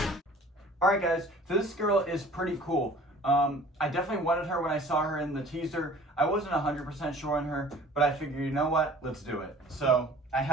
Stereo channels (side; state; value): both; normal; correlation 0.49